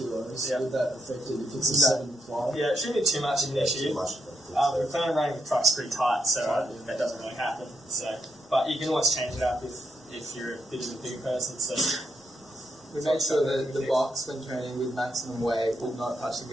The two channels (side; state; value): both; normal; correlation 0.80